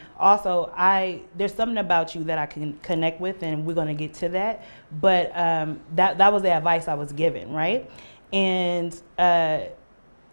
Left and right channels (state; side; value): inverted; both; correlation -1.00